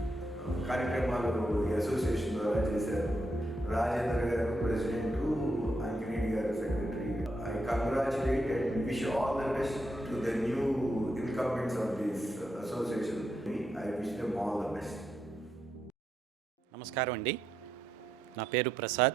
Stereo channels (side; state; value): both; normal; correlation 0.81